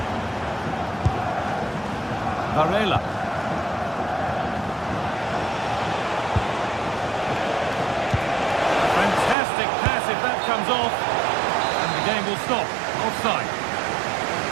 Varela. Fantastic pass if that comes off. And the game will stop. Offside.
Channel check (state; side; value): drops out; left; at 9.3 s